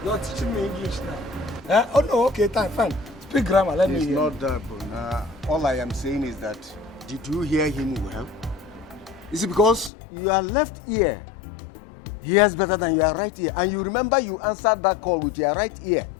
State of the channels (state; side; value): drops out; right; at 9.9 s